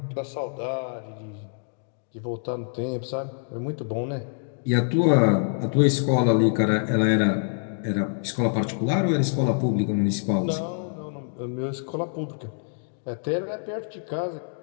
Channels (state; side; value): silent; right; digital silence